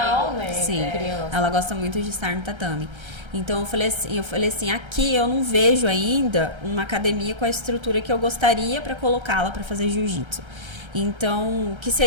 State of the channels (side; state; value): left; late; 1.3 ms